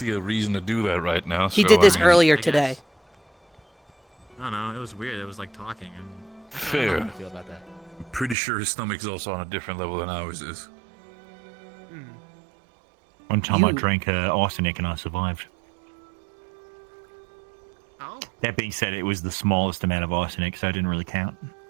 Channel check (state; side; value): drops out; left; at 8.3 s